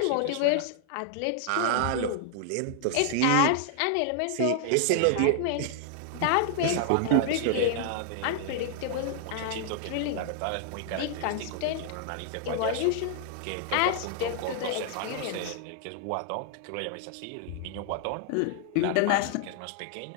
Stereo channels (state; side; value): different; both; correlation 0.00